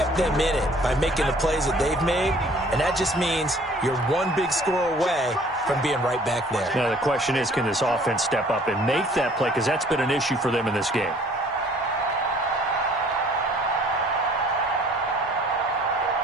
them in it by making the plays that they've made, and that just means you're one big score away from being right back there. Now, the question is, can this offense step up and make that play? Because that's been an issue for them in this game.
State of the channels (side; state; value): both; normal; correlation 0.55